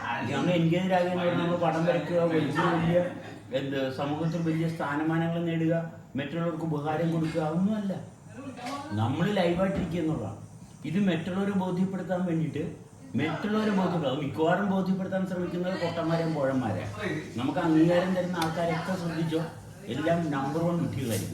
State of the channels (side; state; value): both; identical; correlation 1.00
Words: നമ്മൾ എൻഗേജ്ഡ് ആകുക എന്ന് പറഞ്ഞാൽ നമ്മൾ പടം വരയ്ക്കുക, വലിയ സമൂഹത്തിൽ വലിയ സ്ഥാനമാനങ്ങൾ നേടുക, മറ്റുള്ളവർക്ക് ഉപകാരം കൊടുക്കുക, അതൊന്നുമല്ല. നമ്മൾ ലൈവായിട്ടിരിക്കുക എന്നുള്ളതാണ്. ഇത് മറ്റുള്ളവരെ ബോധ്യപ്പെടുത്താൻ വേണ്ടിയിട്ട് മിക്കവാറും ബോധ്യപ്പെടുത്താൻ ശ്രമിക്കുന്നത് പൊട്ടന്മാരെയും പോഴന്മാരെ. നമുക്ക് അംഗീകാരം തരുന്ന ആൾക്കാരൊക്കെ ശ്രദ്ധിച്ചോ, എല്ലാം നമ്പർ 1